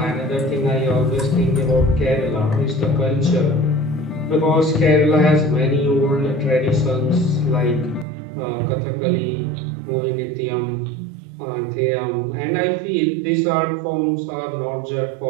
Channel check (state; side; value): drops out; left; at 8.1 s